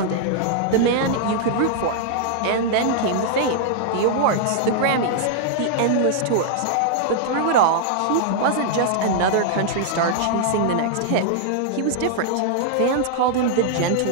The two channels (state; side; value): different; both; correlation -0.01